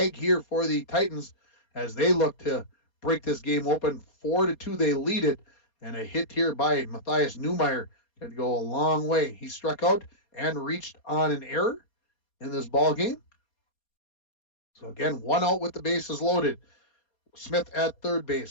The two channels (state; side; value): late; right; 4.3 ms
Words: here for the Titans as they look to break this game open. 4-2, they lead it. And a hit here by Matthias Neumeyer could go a long way. He struck out and reached on an error in this ball game. So again, 1 out with the bases loaded. Smith at third